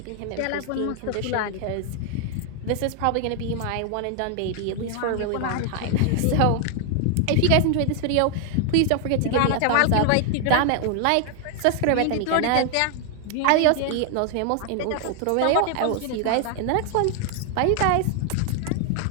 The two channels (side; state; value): both; different; correlation 0.00